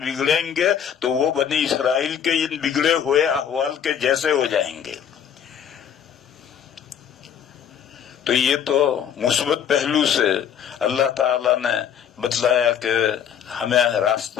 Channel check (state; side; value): quieter; right; 8.6 dB